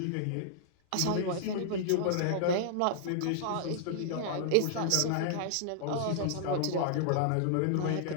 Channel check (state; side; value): different; both; correlation -0.01